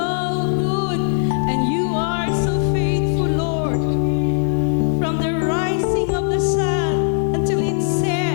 good and you are so faithful, Lord. From the rising of the sun until it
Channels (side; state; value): right; silent; digital silence